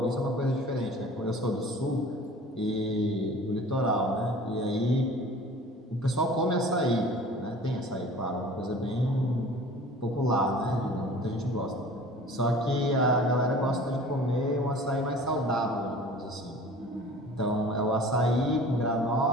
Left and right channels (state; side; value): normal; both; correlation 0.44